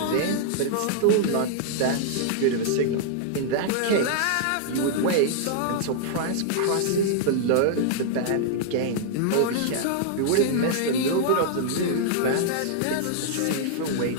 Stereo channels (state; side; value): different; both; correlation -0.01